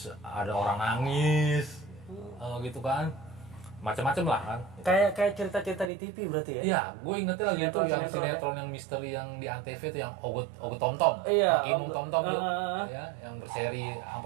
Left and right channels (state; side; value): drops out; left; at 5.9 s